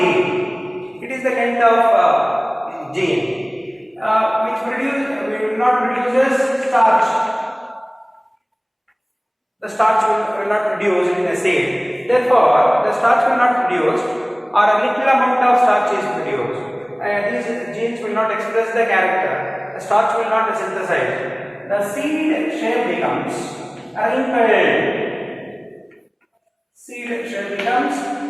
It is the kind of gene which will not produces starch. The starch will not produce in a seed. Therefore, the starch will not produce, or a little amount of starch is produced. These genes will not express the character. The starch will not synthesize. The seed shape becomes wrinkled. Seed shape becomes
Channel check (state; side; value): identical; both; correlation 1.00